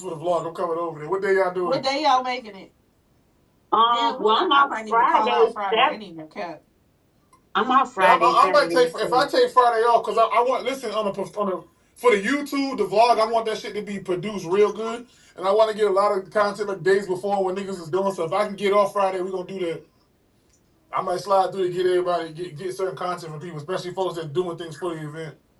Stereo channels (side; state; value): both; identical; correlation 1.00